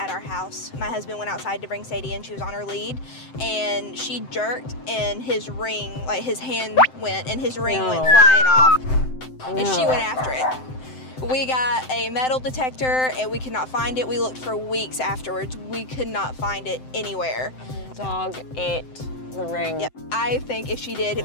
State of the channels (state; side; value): late; right; 7.8 ms